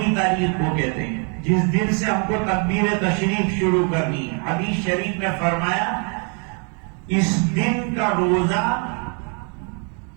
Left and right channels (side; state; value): left; quieter; 38.3 dB